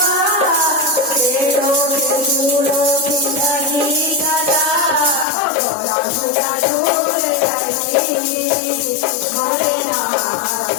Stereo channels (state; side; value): drops out; right; at 5.2 s